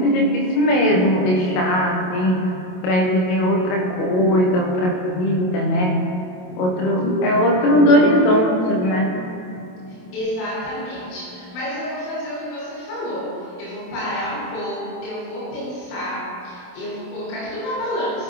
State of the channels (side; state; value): right; late; 27 ms